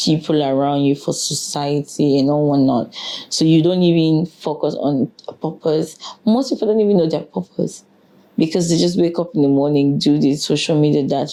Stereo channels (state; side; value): identical; both; correlation 1.00